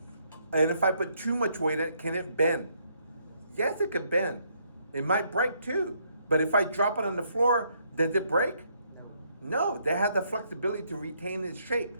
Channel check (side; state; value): both; inverted; correlation -0.71